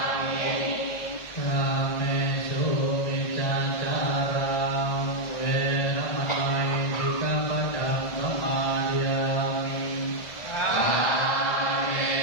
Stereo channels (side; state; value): right; late; 1.6 ms